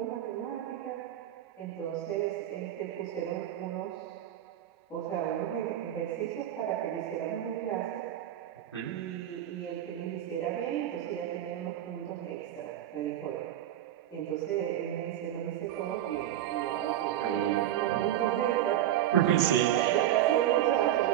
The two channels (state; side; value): quieter; left; 11.9 dB